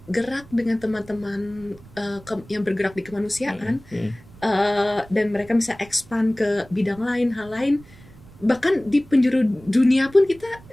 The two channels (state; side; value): noise; right; rumble, 22 dB below the sound